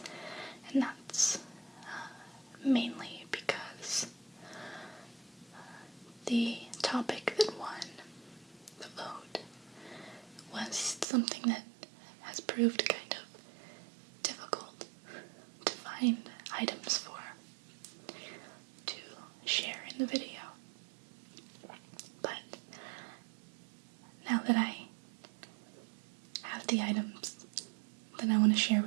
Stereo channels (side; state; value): left; drops out; at 11.1 s